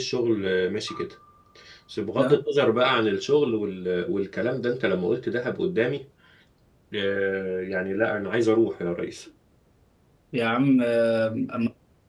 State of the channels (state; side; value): identical; both; correlation 1.00